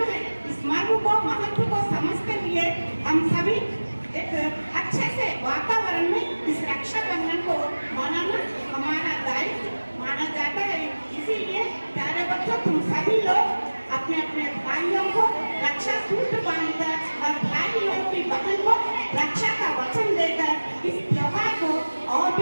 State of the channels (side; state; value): both; inverted; correlation -1.00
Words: है। इस मर्म को, महत्व को समझते हुए हम सभी एक अच्छे से वातावरण में इस रक्षाबंधन को मनाना हमारा दायित्व माना जाता है। इसीलिए प्यारे बच्चों, तुम सभी लोग अपने अपने भाइयों को रक्षा सूत्र बांधकर और भाइयों की बहन को रक्षा का वचन देकर इस त्योहार को और